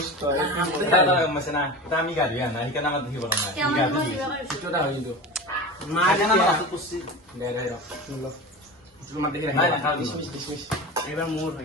তো দাদা মাসে না দামি গাড়ি না এখানে আমার দেখি বড় না গাড়ি ছোটটা হই তো মা জানা না তো কুছি দে দে লো তুমি মা দেখি না খাও ডিসমিস এবার মোর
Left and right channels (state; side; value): normal; both; correlation 0.29